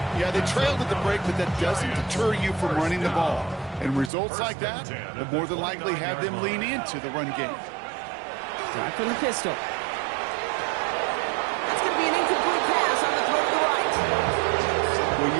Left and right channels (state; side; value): drops out; left; at 4.1 s